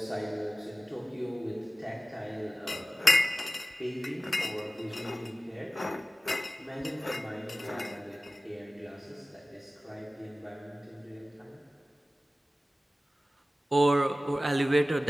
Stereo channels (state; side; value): normal; both; correlation 0.96